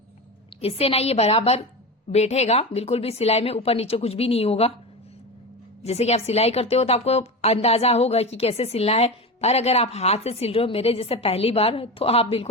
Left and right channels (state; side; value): normal; both; correlation 0.23